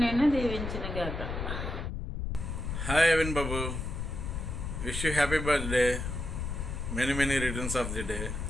నేను దీవించిన గాక. హాయ్ అవిన్ బాబు, wish you happy birthday, many returns of the day,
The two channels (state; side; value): noise; left; rumble, 4 dB below the sound